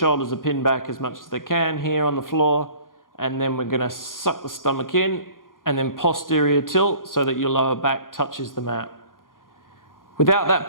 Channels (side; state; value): right; late; 0.90 ms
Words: are pinned back as much as they can here on the floor, and then we're going to suck the stomach in and then posterior tilt so that your lower back touches the mat. Without that